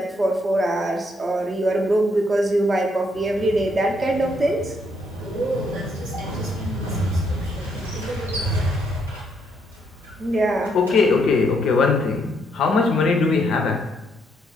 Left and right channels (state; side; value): normal; both; correlation 0.73